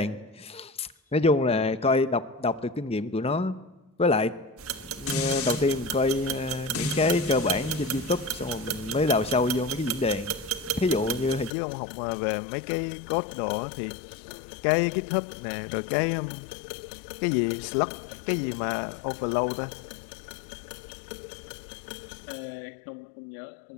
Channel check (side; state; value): right; drops out; at 11.5 s